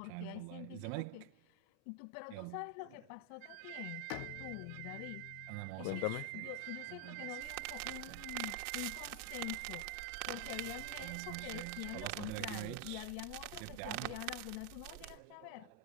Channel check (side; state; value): both; different; correlation 0.01